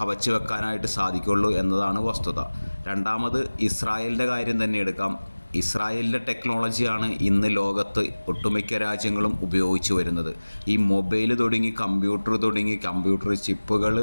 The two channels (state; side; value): inverted; both; correlation -1.00